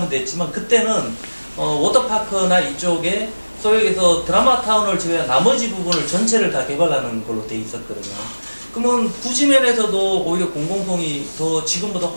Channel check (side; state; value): both; inverted; correlation -1.00